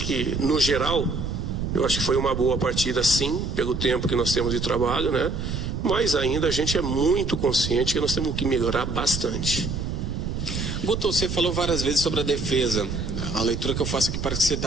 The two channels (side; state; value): right; noise; rumble, 3 dB below the sound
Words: que, no geral, eu acho que foi uma boa partida, sim, pelo tempo que nós temos de trabalho, né? Mas ainda a gente é muito consciente que nós temos que melhorar bastante. Guto, você falou várias vezes sobre a defesa. A leitura que eu faço aqui parece que você